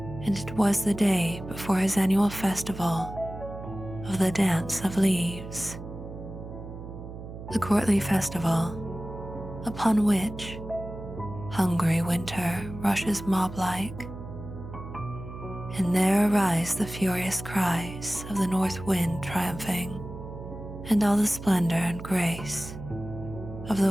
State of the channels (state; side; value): noise; right; hum, 11 dB below the sound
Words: and it was the day before his annual festival of the Dance of Leaves, the courtly festival upon which hungry winter rushes mob-like, and there arise the furious cries of the north wind triumphing, and all the splendor and grace of